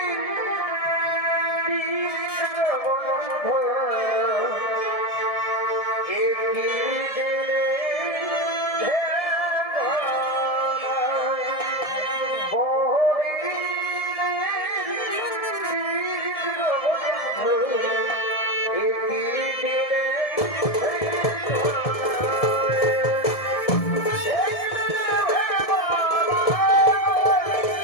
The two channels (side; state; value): right; late; 1.7 ms